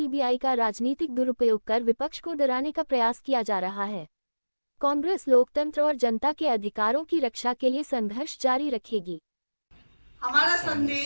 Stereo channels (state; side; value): inverted; both; correlation -1.00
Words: का राजनीतिक दुरुपयोग कर विपक्ष को डराने का प्रयास किया जा रहा है। कांग्रेस लोकतंत्र और जनता के अधिकारों की रक्षा के लिए संघर्ष जारी रखेगी। हमारा